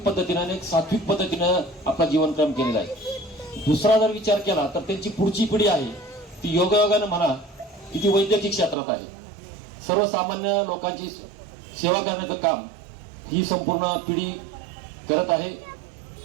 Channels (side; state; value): left; drops out; at 8.8 s